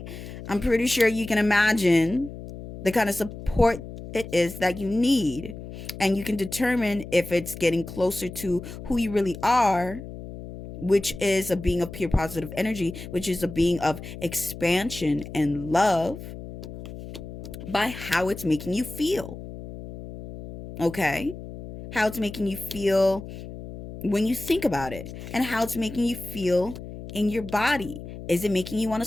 I'm pretty sure you can imagine the kind of support it is that you need. And you can determine if it's getting closer to who you really are, which is a being of pure positive energy, which is a being of expansion and love, by how it's making you feel. Okay? How it's making you feel when you think about it, and how it's making you feel in your body. Is it making you want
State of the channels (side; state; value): left; noise; hum, 12 dB below the sound